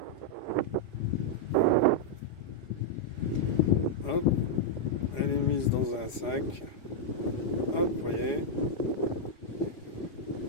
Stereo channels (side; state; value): right; late; 4.8 ms